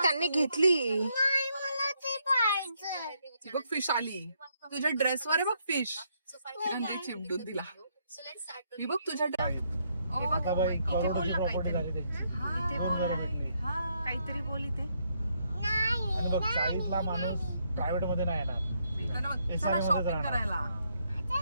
त्यांनी घेतली. नाही, मला ते पाहिजे. बघ फिश आली तुझ्या ड्रेसवर आहे. बघ फिश चिमटून दिला. मी बघ तुझ्या आता बाई करोडोची प्रॉपर्टी झाली ते. दोन घरं भेटली. काहीतरी बोल इथे. आणि बघ साईडला माणूस प्रायव्हेट मध्ये नाही येणार, SRA मध्येच शॉपिंग राहणार. करायला.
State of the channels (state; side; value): inverted; both; correlation -0.75